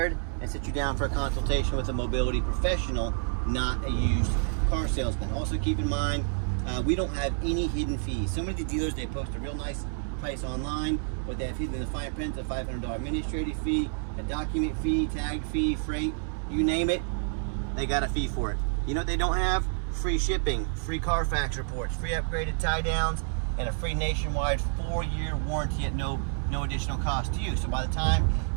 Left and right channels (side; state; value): left; silent; 59 dB below the other